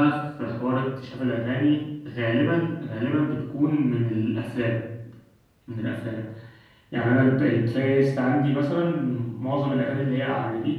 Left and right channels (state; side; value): identical; both; correlation 1.00